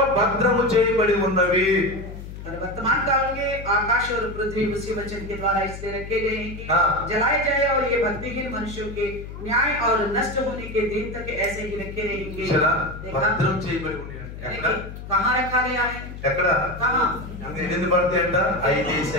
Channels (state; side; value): noise; left; hum, 11 dB below the sound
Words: భద్రము చేయబడి ఉన్నవి. और वर्तमान काल के आकाश और पृथ्वी उसी वचन के द्वारा इसलिए रखे गए हैं कि हाँ। जलाए जाए, और ये भक्तिहीन मनुष्यों के न्याय और नष्ट होने के दिन तक ऐसे ही रखे रहेंगे। చూసారా? देखा? భద్రం చేయబడి ఉన్నాయి. ఎక్కడ? कहाँ रखा गया है? ఎక్కడ? कहाँ? ఎన్ని పడతాయి అంట?